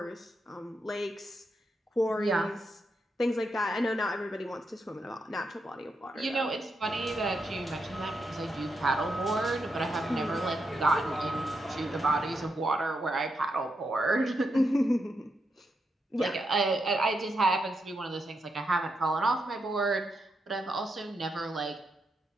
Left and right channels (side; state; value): both; normal; correlation 0.83